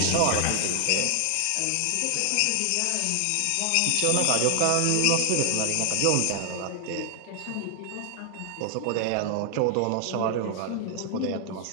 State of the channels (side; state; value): both; different; correlation 0.00